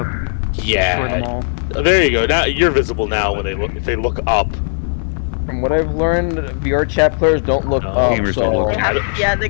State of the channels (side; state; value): right; silent; 68 dB below the other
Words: Destroy Yeah. them all. There you go. Now you're visible now when they look. If they look up. From what I've learned, VRChat players don't look up, gamers so... don't look They yeah, they